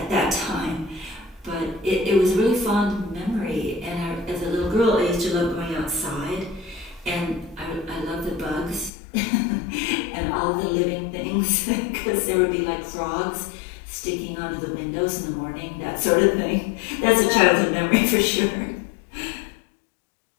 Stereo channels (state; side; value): drops out; right; at 8.9 s